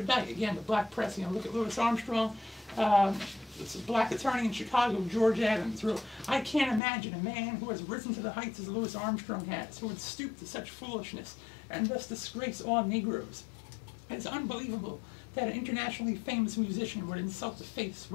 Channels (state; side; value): drops out; right; at 6.8 s